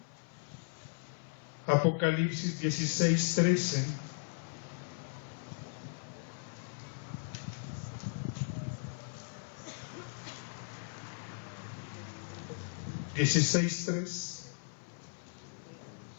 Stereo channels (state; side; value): silent; right; 53 dB below the other